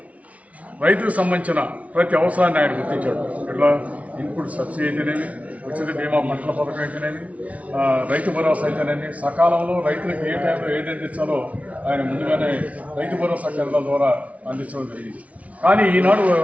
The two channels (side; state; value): left; late; 0.067 ms